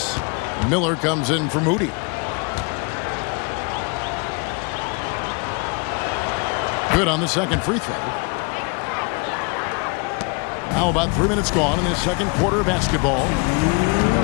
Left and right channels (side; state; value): right; quieter; 32.3 dB